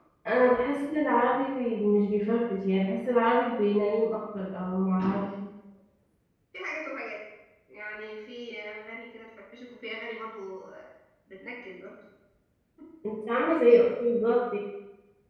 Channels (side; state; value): both; identical; correlation 1.00